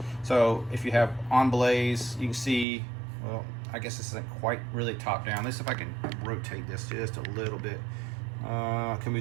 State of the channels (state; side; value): drops out; left; at 2.7 s